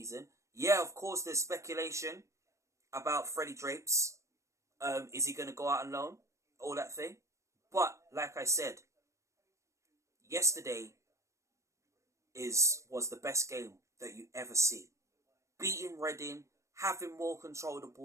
Yeah, of course, there's speculation about Freddie Drapes. Is he going to go out on loan? All that thing. But, like I said, yesterday was the best game that you ever see. Beating Reading, having more control of the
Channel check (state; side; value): late; left; 0.15 ms